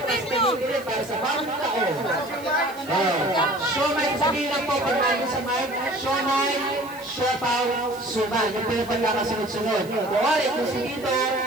para sa bawat taon. Siomai, sabihin lang po pag namin sa mic. Siomai, siopaw, suman. Yung pinapagkakasunod-sunod. Kuwari, kung si Tito.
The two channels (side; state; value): right; noise; hiss, 22 dB below the sound